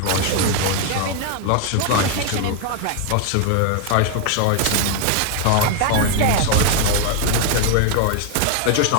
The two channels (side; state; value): both; different; correlation 0.00